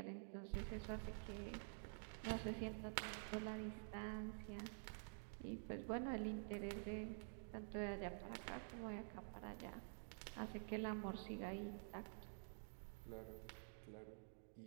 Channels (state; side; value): silent; left; digital silence